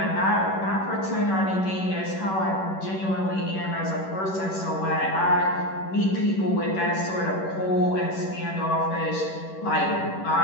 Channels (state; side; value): late; right; 11 ms